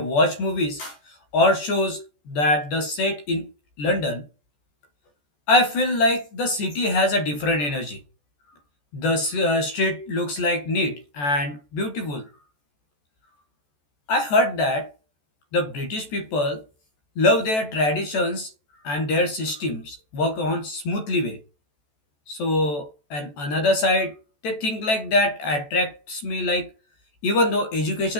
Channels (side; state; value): right; late; 14 ms